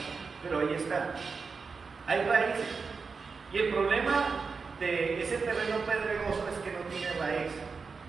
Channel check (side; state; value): left; quieter; 4.9 dB